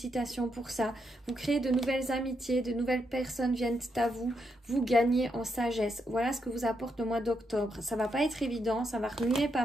pour ça. Vous créez de nouvelles amitiés, de nouvelles personnes viennent à vous, vous gagnez en sagesse. Voilà ce que vous apporte le mois d'octobre. Ça va pas être évident, ça va remuer pas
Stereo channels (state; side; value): normal; both; correlation 0.80